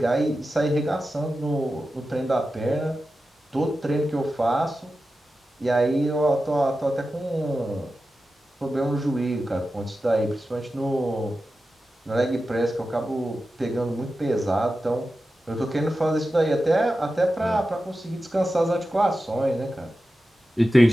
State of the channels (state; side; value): normal; both; correlation 0.93